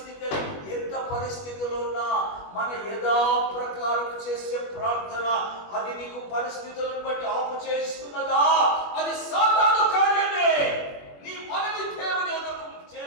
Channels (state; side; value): late; right; 21 ms